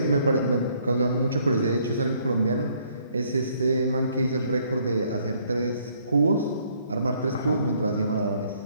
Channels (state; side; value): inverted; both; correlation -0.65